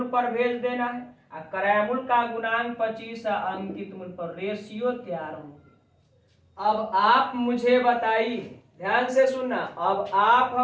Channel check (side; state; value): both; identical; correlation 1.00